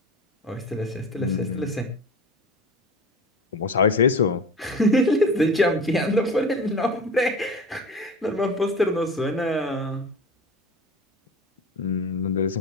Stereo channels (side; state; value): both; normal; correlation 0.35